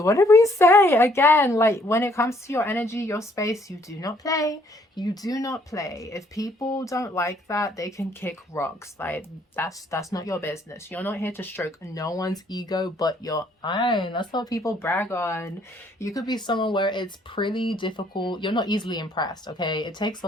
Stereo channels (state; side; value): normal; both; correlation 0.65